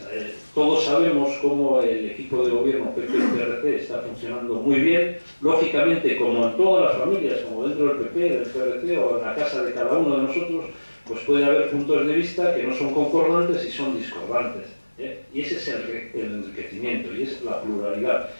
todos sabemos cómo el equipo de gobierno PP y PRC está funcionando muy bien. Lógicamente, como en todas las familias, como dentro del PP, del PRC o en la casa de cada uno de nosotros, pues puede haber puntos de vista que no son concordantes y son discordantes. Y ese es el enriquecimiento y es la pluralidad.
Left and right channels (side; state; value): both; inverted; correlation -1.00